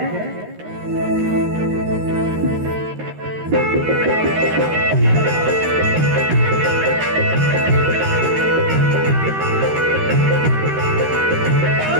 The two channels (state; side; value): late; left; 13 ms